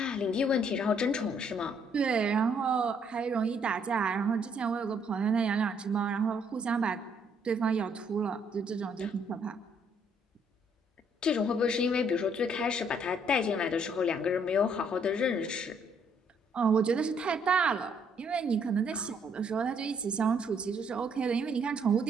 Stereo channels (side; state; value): both; normal; correlation 0.68